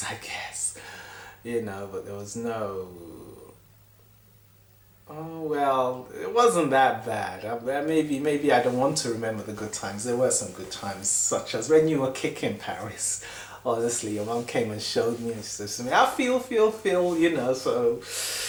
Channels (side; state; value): both; identical; correlation 1.00